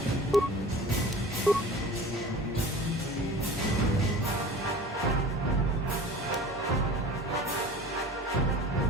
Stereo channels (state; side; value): normal; both; correlation 0.40